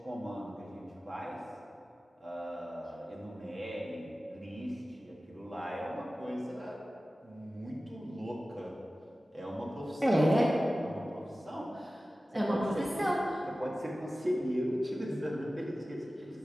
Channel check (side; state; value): both; normal; correlation 0.96